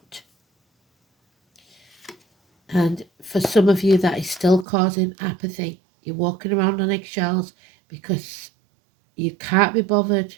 And for some of you, that is still causing apathy. You're walking around on eggshells because you can't be bothered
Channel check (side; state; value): left; drops out; at 4.7 s